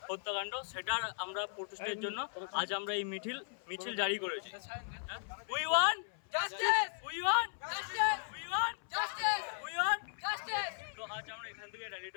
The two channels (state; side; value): silent; right; 53 dB below the other